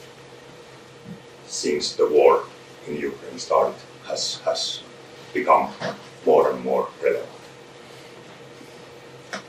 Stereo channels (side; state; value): both; identical; correlation 1.00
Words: since the war in Ukraine started has become more and more relevant.